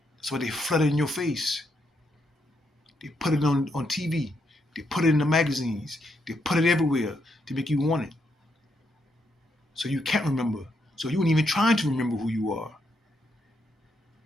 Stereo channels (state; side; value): normal; both; correlation 0.78